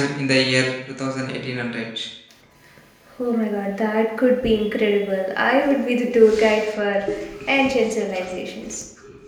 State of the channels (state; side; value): identical; both; correlation 1.00